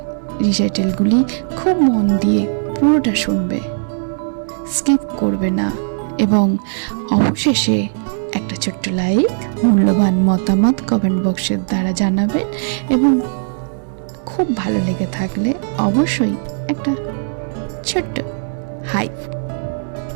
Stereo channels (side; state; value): left; silent; digital silence